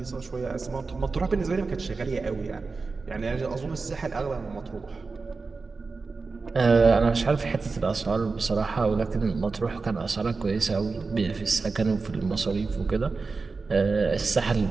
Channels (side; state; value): left; quieter; 4.2 dB